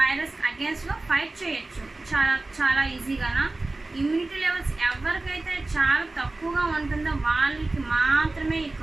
అగేన్స్ట్లో ఫైట్ చేయొచ్చు చాలా ఈజీగానా. ఇమ్యూనిటీ లెవెల్స్ ఎవరికైతే చాలా తక్కువగా ఉంటుందో వాళ్ళకి మాత్రమే ఈ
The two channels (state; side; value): quieter; left; 3.1 dB